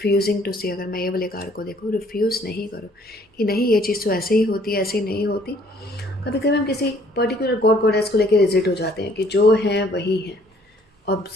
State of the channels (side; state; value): both; normal; correlation 0.60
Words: टू सी, अगर मैं ये वाले कार्ड को देखूँ, रिफ्यूज़ नहीं करो कि नहीं ये चीज़ तो ऐसे ही होती है, ऐसे ही नहीं होती। कभी कभी हम किसी पर्टिकुलर गॉड गॉडेस को लेकर रिजिट हो जाते हैं कि जो हैं वही हैं।